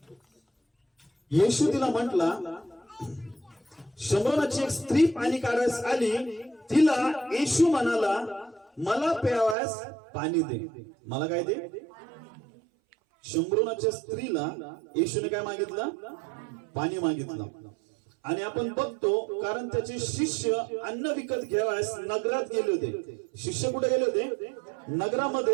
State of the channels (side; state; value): left; drops out; at 9.6 s